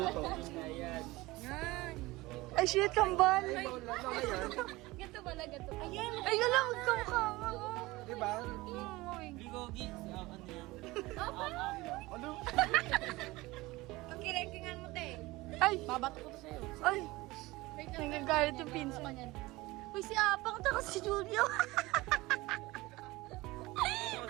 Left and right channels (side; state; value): left; quieter; 20.5 dB